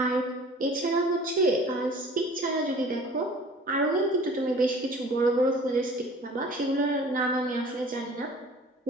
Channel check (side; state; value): both; normal; correlation 0.47